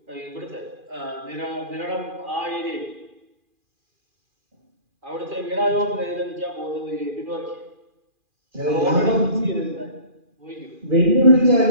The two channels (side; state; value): left; late; 2.4 ms